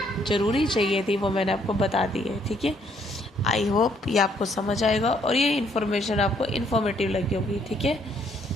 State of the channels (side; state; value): both; normal; correlation 0.68